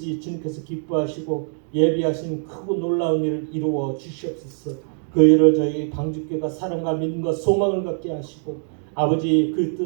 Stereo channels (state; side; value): silent; left; 64 dB below the other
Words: 주님께서 기뻐하시고 예비하신 크고 놀라운 일을 이루어 주시옵소서. 그 일을 저희 방주교가 사랑과 믿음과 소망을 갖게 하시고 아버지 그